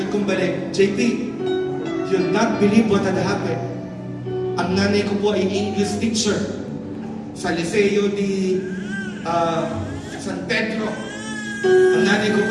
kong balik, JP, you'll not believe what had happened. Ang nanay ko po ay English teacher sa Liceo di San Pedro. Ang nanay ko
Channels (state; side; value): identical; both; correlation 1.00